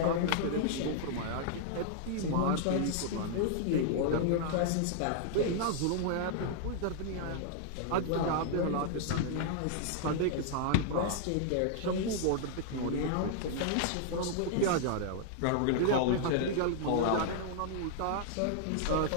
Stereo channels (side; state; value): both; different; correlation -0.01